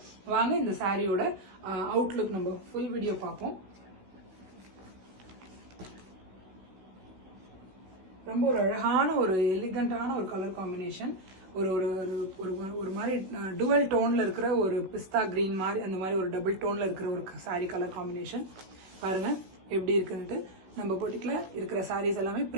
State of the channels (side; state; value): left; late; 16 ms